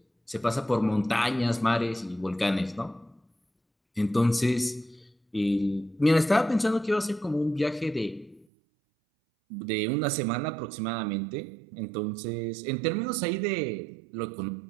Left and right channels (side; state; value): left; drops out; at 8.5 s